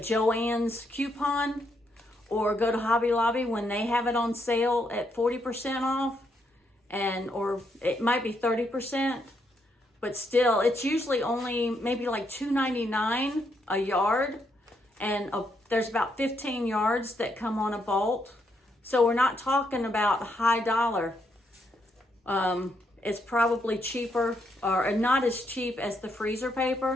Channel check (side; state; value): both; normal; correlation 0.77